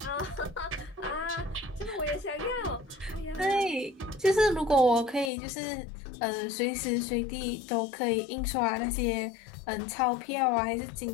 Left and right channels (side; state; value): right; drops out; at 5.3 s